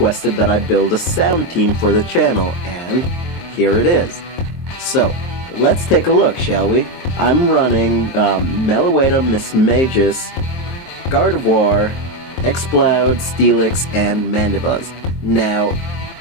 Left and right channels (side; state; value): right; late; 23 ms